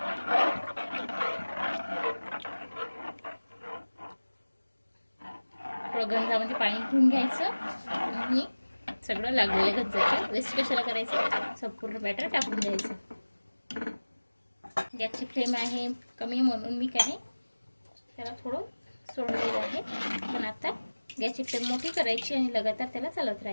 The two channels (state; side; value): inverted; both; correlation -1.00